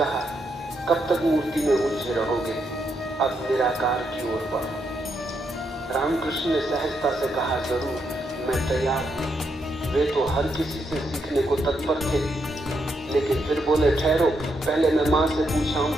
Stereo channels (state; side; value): normal; both; correlation 0.80